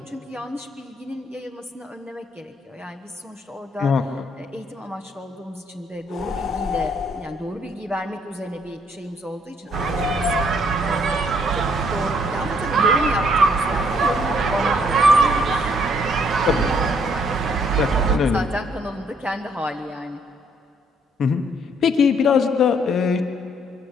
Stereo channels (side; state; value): both; normal; correlation 0.67